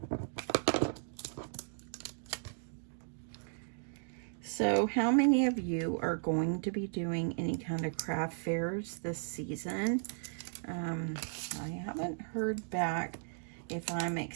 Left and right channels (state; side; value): silent; left; digital silence